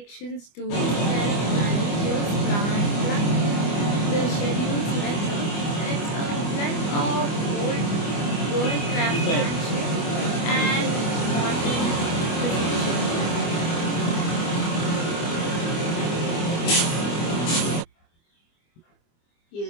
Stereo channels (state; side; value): late; right; 25 ms